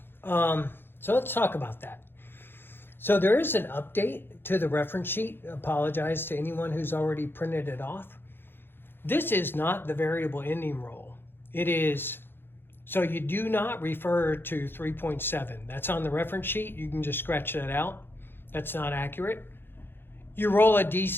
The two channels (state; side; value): late; right; 0.10 ms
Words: so let's talk about that. So there is an update to the reference sheet. Apologize to anyone who's already printed it off. This is not the variable ending roll. It is, so you do not refer to 3.7. That's on the reference sheet. You can just scratch that out. That's not accurate. You roll a